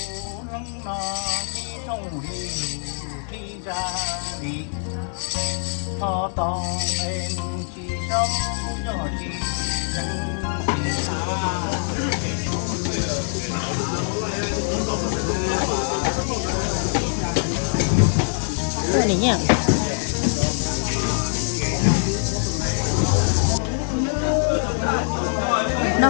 lăng nọ đi trong đi đi ra đi thọ tòng em chỉ sống cho chỉ chân chỉ cái này nhá nó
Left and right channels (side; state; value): right; silent; digital silence